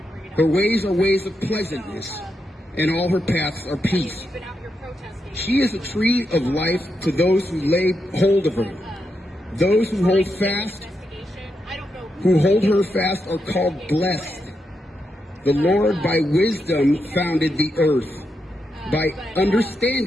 Her ways are ways of pleasantness, and all her paths are peace. She is a tree of life to those who lay hold of her. Those who hold her fast are called blessed. The Lord by wisdom founded the earth. By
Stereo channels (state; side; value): normal; both; correlation 0.84